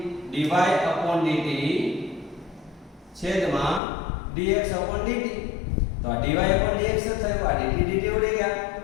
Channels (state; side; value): drops out; right; at 3.8 s